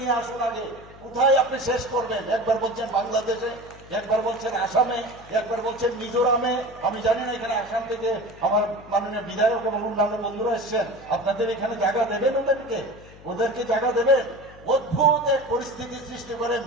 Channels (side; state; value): left; noise; hum, 21 dB below the sound